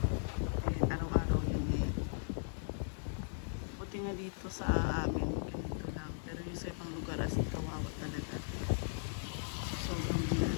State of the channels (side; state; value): right; silent; digital silence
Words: Araw-araw yun eh. Buti nga dito sa amin, ganito lang. Pero yung sa ibang lugar as in kawawa talaga. Sobrang